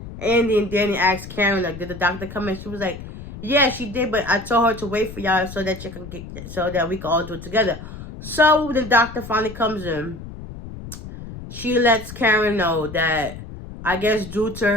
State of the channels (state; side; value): noise; left; rumble, 12 dB below the sound